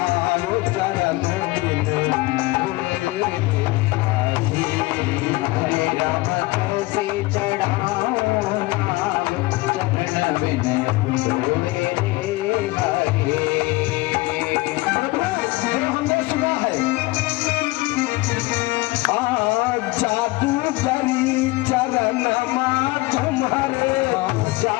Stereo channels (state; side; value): quieter; right; 21.3 dB